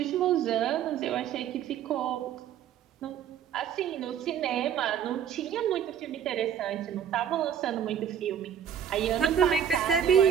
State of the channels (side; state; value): left; quieter; 8.9 dB